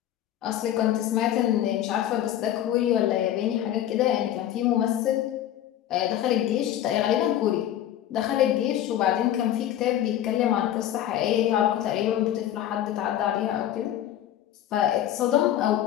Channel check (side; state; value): right; quieter; 11.8 dB